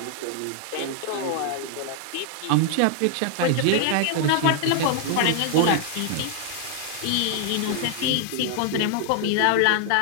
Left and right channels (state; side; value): different; both; correlation 0.00